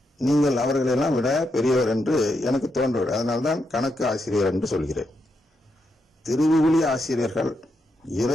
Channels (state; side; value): normal; both; correlation 0.82